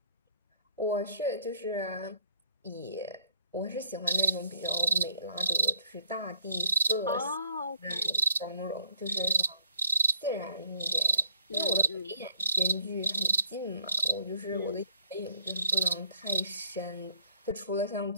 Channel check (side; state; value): both; inverted; correlation -0.62